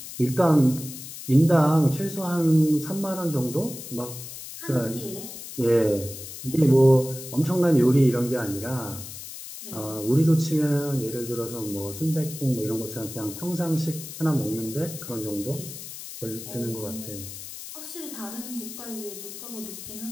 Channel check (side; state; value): left; noise; hiss, 11 dB below the sound